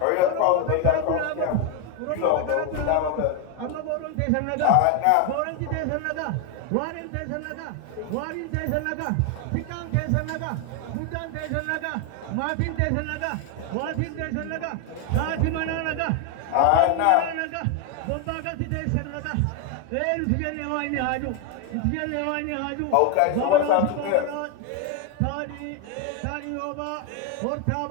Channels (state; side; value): different; both; correlation 0.01